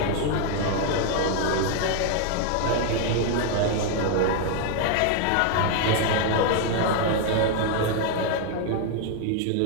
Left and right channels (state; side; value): different; both; correlation 0.00